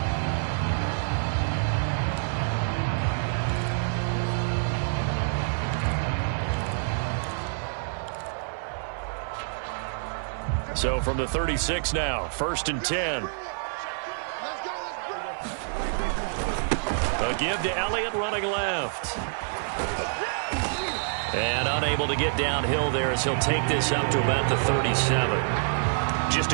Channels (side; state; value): left; silent; 57 dB below the other